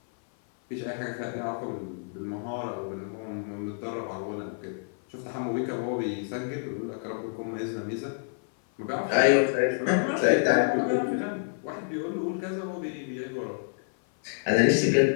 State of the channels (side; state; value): right; silent; 56 dB below the other